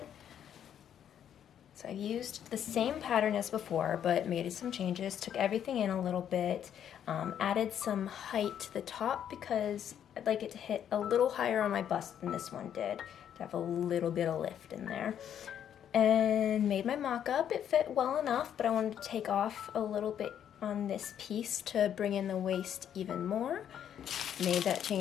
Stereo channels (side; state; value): right; quieter; 9.5 dB